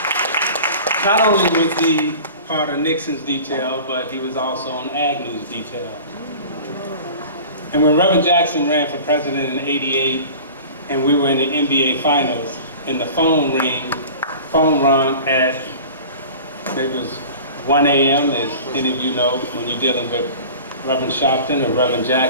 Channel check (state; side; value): inverted; both; correlation -0.39